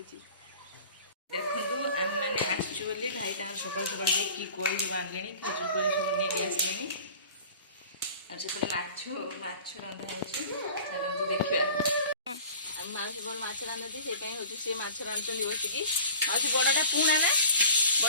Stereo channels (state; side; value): inverted; both; correlation -0.44